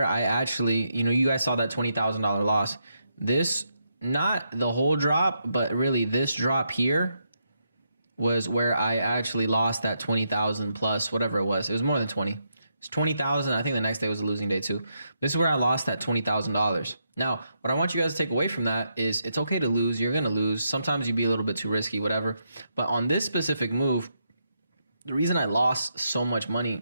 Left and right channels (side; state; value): both; inverted; correlation -0.81